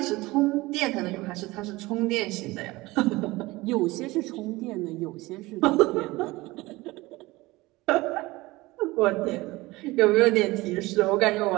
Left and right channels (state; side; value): quieter; left; 20.5 dB